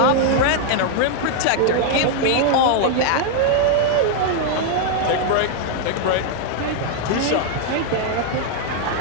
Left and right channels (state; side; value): different; both; correlation 0.00